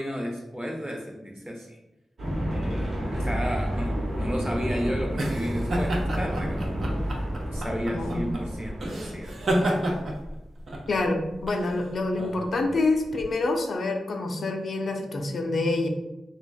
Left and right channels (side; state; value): both; normal; correlation 0.90